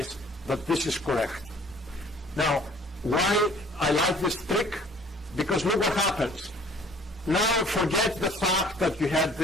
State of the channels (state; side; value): normal; both; correlation 0.53